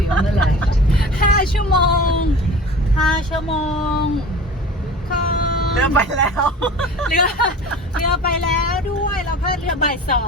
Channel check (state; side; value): normal; both; correlation 0.39